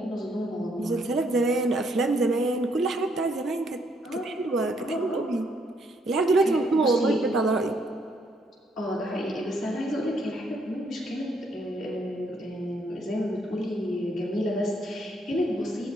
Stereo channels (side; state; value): both; normal; correlation 0.71